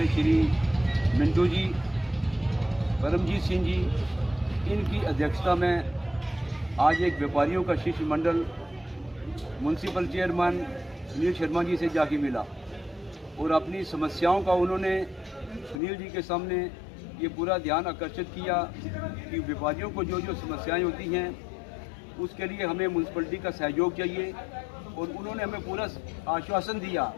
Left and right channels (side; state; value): right; drops out; at 15.8 s